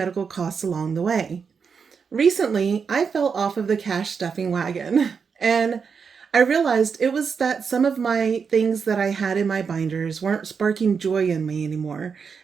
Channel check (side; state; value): left; quieter; 5.9 dB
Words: costs along the way. Recently, I fell off of the cash stuffing wagon and I realized it was that some of my things that I had in my binders weren't sparking joy in me anymore,